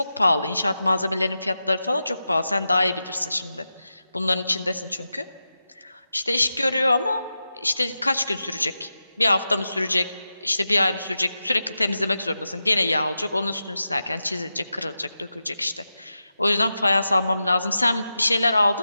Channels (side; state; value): both; inverted; correlation -0.90